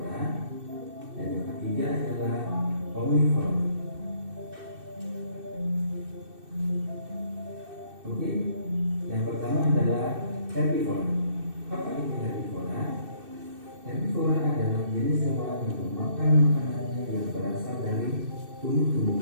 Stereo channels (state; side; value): late; left; 2.6 ms